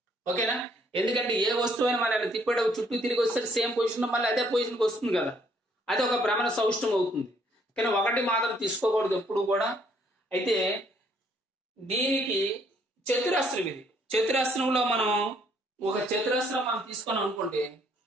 ఓకేనా? ఎందుకంటే ఏ వస్తువు అయినా మనం తిప్పేటప్పుడు చుట్టూ తిరిగి వస్తే సేమ్ పొజిషన్ మళ్ళీ అదే పొజిషన్కి వస్తుంది కదా, అది ఒక భ్రమణ సౌష్ఠవం అవుతుంది. కానీ 1 మాత్రం తీసుకోకూడదు ఎప్పుడు కూడా. అయితే దీనికి చతురస్రం, ఇది చతురస్రంలో మనం ఒక చతురస్రం మనం తీసుకున్నాం అనుకోండి,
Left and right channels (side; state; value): both; normal; correlation 0.66